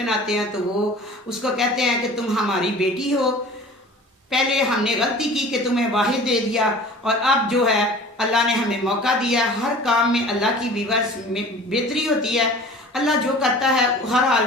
हैं। तो वो उसको कहते हैं कि तुम हमारी बेटी हो, पहले हमने गलती की कि तुम्हें वाहिद दे दिया, और अब जो है अल्लाह ने हमें मौका दिया। हर काम में अल्लाह की वीवर्स में बेहतरी होती है, अल्लाह जो करता है हर हाल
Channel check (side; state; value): both; normal; correlation 0.43